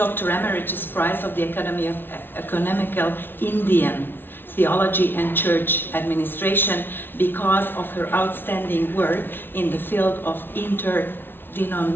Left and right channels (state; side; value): late; right; 0.10 ms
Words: Emeritus Prize of the Academy of Economical Indian Theology and Church Administration because of her outstanding work in the field of